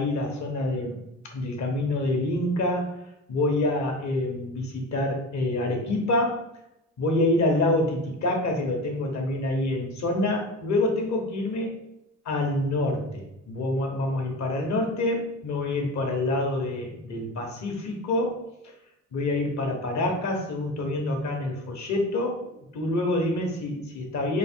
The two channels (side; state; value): both; normal; correlation 0.31